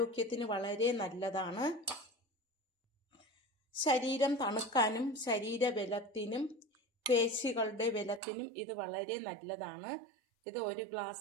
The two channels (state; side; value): drops out; left; at 8.2 s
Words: വളരെ നല്ലതാണ്. ശരീരം തണുക്കാനും ശരീരബലത്തിനും പേശികളുടെ ബലത്തിനും ഇത് വളരെ നല്ലതാണ്. ഇത് ഒരു